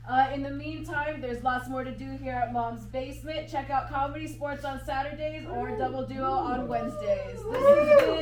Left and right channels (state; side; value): identical; both; correlation 1.00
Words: In the meantime, there's lots more to do here at Mom's Basement. Check out Comedy Sports on Saturdays or Double Duo on Wednesdays. This has